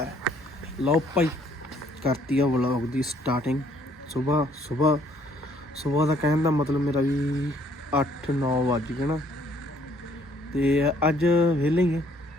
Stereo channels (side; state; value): both; normal; correlation 0.64